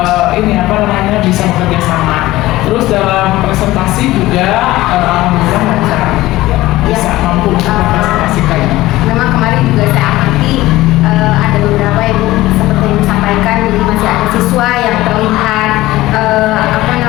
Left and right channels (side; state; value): right; quieter; 17.3 dB